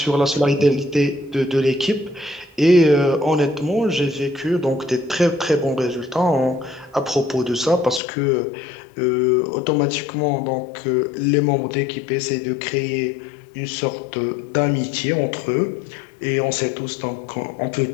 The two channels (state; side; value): drops out; right; at 8.0 s